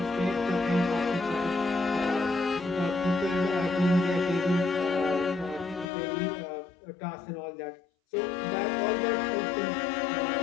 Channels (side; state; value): right; drops out; at 5.9 s